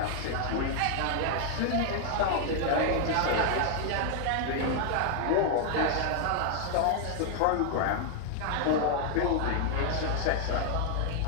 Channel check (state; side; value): different; both; correlation 0.00